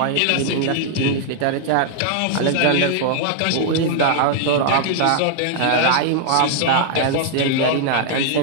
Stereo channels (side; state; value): both; different; correlation -0.01